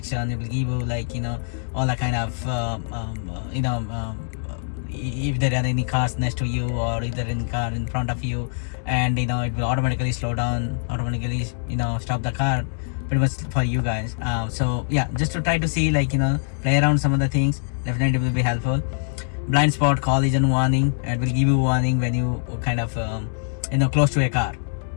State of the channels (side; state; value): right; silent; digital silence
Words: It will give you like all the kind of if there are any cars next to you, or if there is any car in front of you, and it will automatically slow down, automatically stop the car, pretty much for you guys. So yeah, just to try to see like play around some of the things, definitely will be helpful. Blind spot collision warning, it will give you warning when you kind of close to a car,